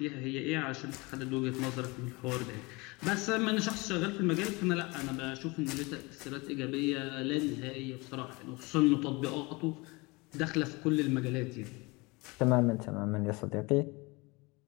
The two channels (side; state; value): right; quieter; 25.5 dB